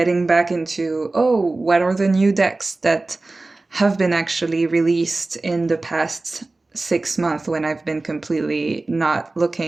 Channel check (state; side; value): quieter; left; 3.2 dB